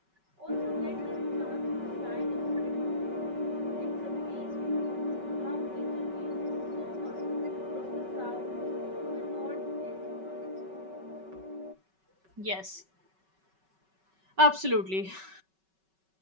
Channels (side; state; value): left; late; 5.3 ms